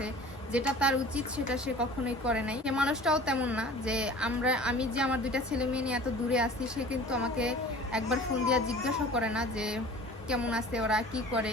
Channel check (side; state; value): both; normal; correlation 0.43